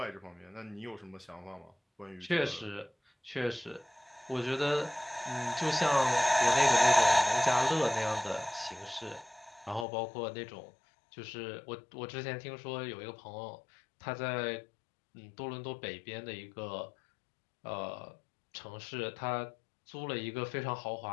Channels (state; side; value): drops out; right; at 9.9 s